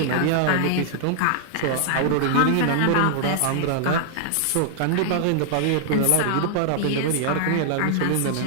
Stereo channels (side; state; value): both; different; correlation -0.01